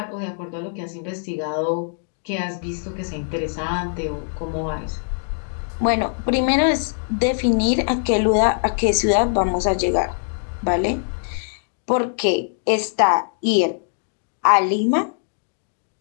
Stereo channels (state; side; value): silent; right; digital silence